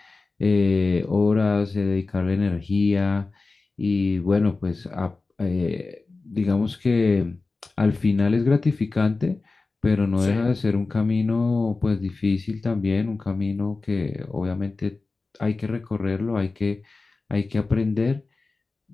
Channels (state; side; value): quieter; right; 3.7 dB